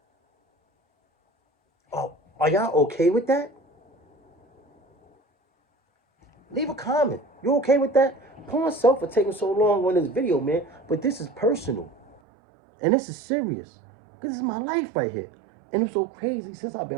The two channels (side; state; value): left; drops out; at 12.2 s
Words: Oh, are y'all okay with that? Leave a comment. You okay with that? Pour myself for taking so long on this video, man. But this is personal. And this is serious. This is my life right here. And it's so crazy. Since I've